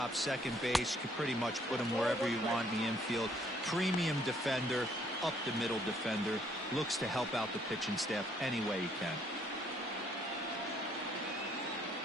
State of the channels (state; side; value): normal; both; correlation 0.66